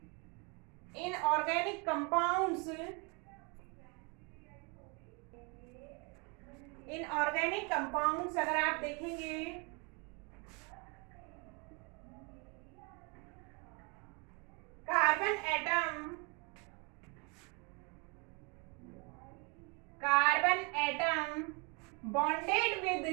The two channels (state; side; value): quieter; left; 32.1 dB